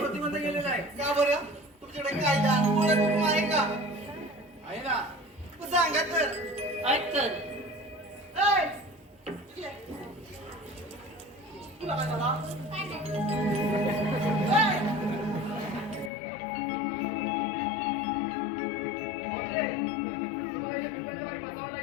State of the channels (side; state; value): right; drops out; at 16.1 s